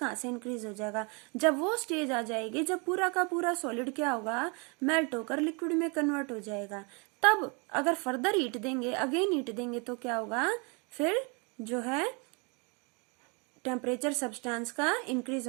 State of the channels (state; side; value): quieter; left; 32.3 dB